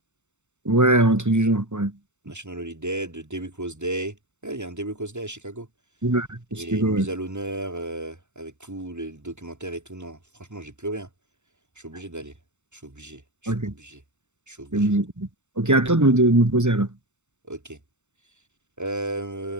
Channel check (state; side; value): late; left; 0.84 ms